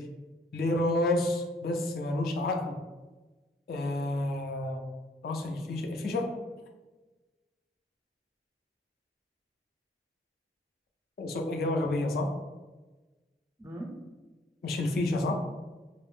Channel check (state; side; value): normal; both; correlation 0.62